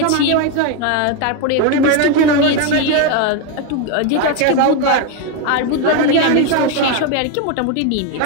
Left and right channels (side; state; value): both; different; correlation 0.02